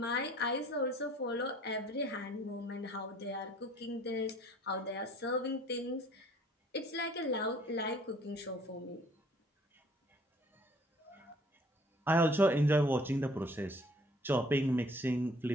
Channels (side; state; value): both; normal; correlation 0.56